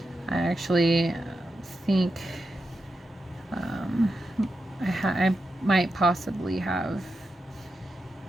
I actually think I might possibly have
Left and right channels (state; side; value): normal; both; correlation 0.88